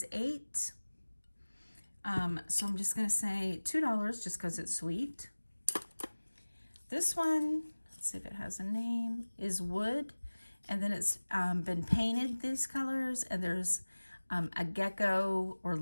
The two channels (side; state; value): both; inverted; correlation -1.00